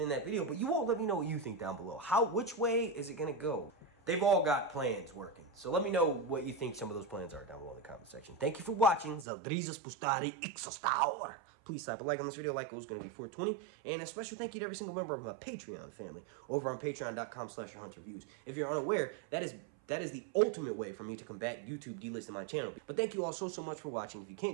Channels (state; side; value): drops out; left; at 9.2 s